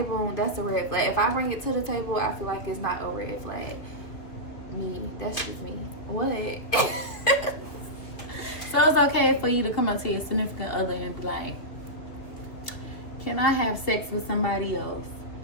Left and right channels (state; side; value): late; right; 2.9 ms